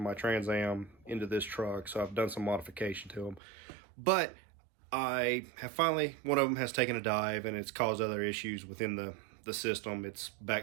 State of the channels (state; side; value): drops out; left; at 3.4 s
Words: my Trans Am into this truck, so I've done some modification to them. But I have finally, one of them has taken a dive and it's caused other issues within the system. It's